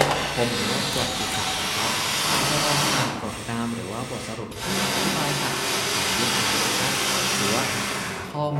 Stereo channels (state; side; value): identical; both; correlation 1.00